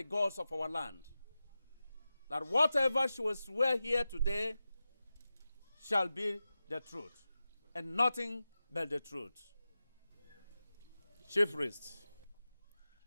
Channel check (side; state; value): both; inverted; correlation -0.94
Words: gods of our land, that whatever she will swear here today shall be the truth, and nothing but the truth. Chief Priest.